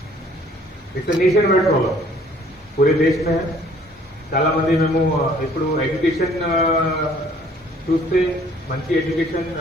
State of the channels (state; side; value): normal; both; correlation 0.58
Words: ఇట్స్ నేషన్ వైడ్ ప్రాబ్లం, పూరే దేశ్ మే. చాలా మంది మేము ఇప్పుడు ఎడ్యుకేషన్ చూస్తే మంచి education